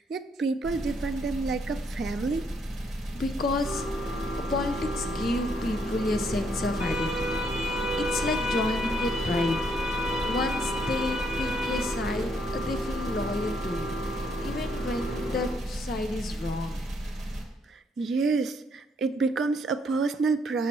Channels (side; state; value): both; normal; correlation 0.71